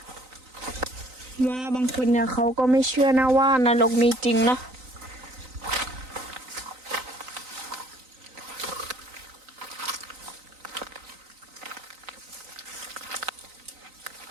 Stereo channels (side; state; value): left; late; 3.9 ms